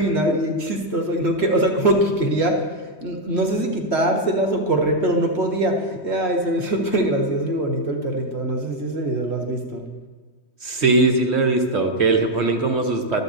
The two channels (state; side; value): late; right; 3.2 ms